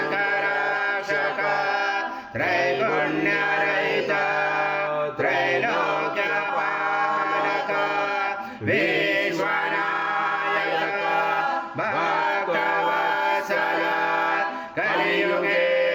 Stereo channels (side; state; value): both; identical; correlation 1.00